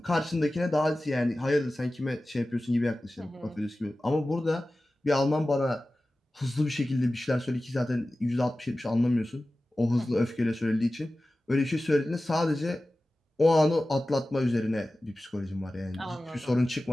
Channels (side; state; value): both; normal; correlation 0.96